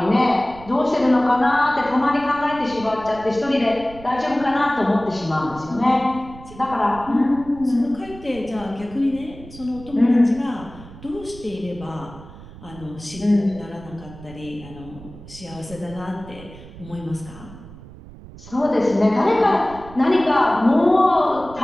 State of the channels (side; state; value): right; noise; rumble, 17 dB below the sound